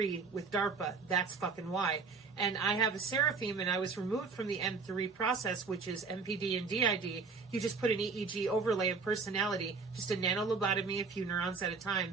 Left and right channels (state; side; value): quieter; left; 4.7 dB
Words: with DARPA. That's fucking why. And I have a seraphim, and I was removed from the N3 process, which is MPD and DID. You just put an EEG overlay of personality, just a nanolobotomy, a few neurons at a